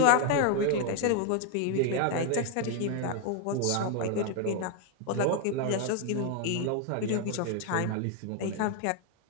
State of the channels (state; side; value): different; both; correlation 0.00